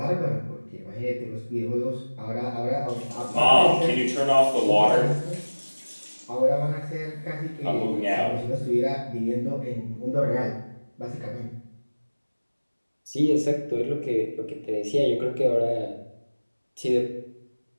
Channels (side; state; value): both; inverted; correlation -1.00